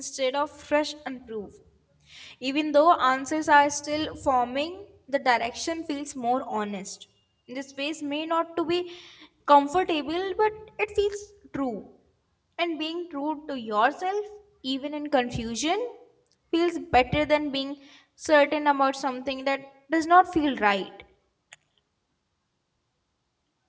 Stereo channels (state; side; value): identical; both; correlation 1.00